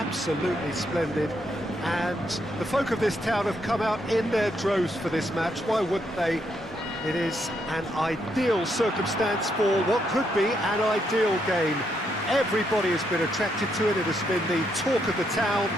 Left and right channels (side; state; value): both; normal; correlation 0.77